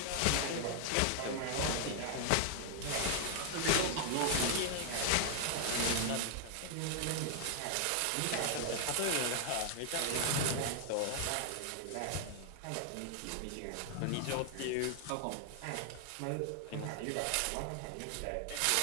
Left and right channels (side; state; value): both; different; correlation 0.00